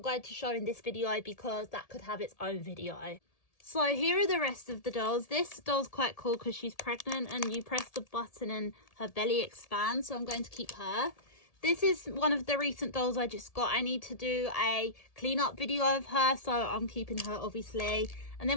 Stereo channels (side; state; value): right; late; 1.7 ms